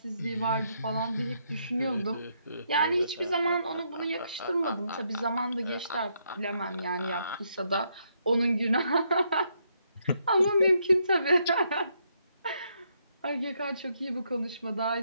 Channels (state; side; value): inverted; both; correlation -0.76